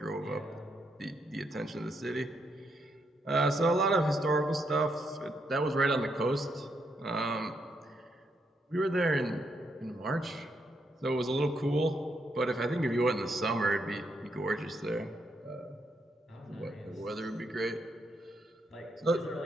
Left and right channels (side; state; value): both; normal; correlation 0.78